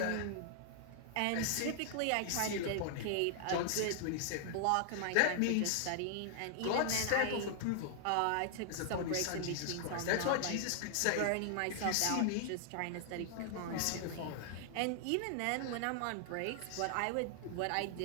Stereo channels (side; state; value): both; different; correlation 0.00